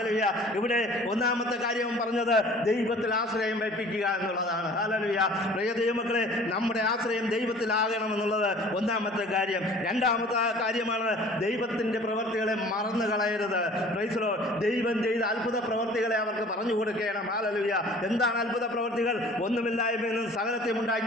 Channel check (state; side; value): normal; both; correlation 0.48